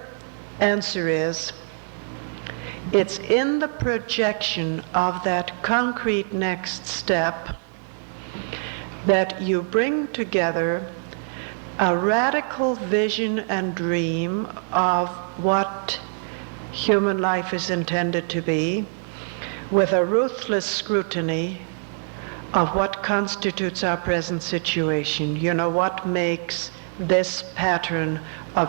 answer is, it's in the projection of that concrete next step that you bring together a radical vision and dream of what human life is intended to be, with a ruthless scrutiny of what constitutes our present situation. You know, what makes this pattern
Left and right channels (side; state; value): left; silent; 62 dB below the other